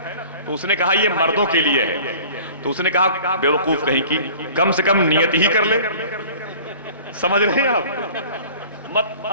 تو اس نے کہا یہ مردوں کے لیے ہے، تو اس نے کہا بے وقوف کہیں کی کم سے کم نیت ہی کر لے، سمجھ رہے ہیں آپ، مت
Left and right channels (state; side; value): inverted; both; correlation -0.45